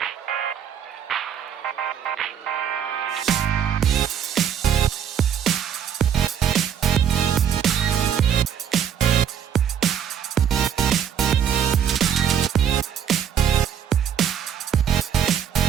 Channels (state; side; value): quieter; left; 8.7 dB